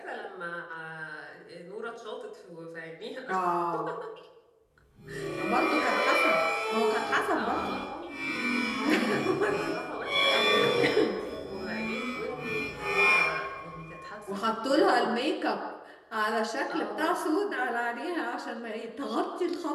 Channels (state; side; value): identical; both; correlation 1.00